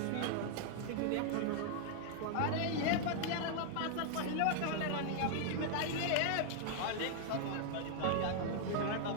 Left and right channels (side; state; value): both; different; correlation 0.00